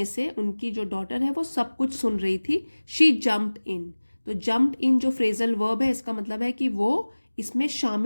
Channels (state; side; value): inverted; both; correlation -1.00